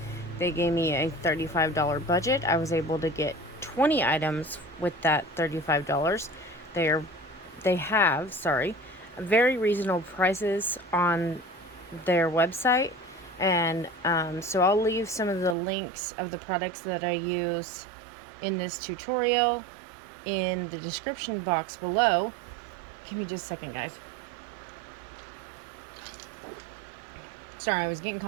They gave me a $35 budget. I was able to get 20 items with that $35. They have very reasonable prices on their website. And so I'll leave some of the links of the products that I use in this tutorial in the description box below. Give me just a second, guys. Sorry, I was getting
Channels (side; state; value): left; drops out; at 15.6 s